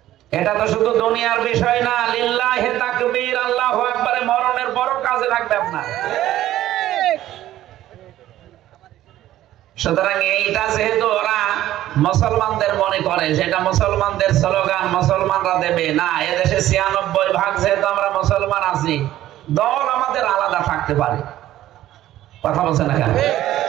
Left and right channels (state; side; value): quieter; left; 13.8 dB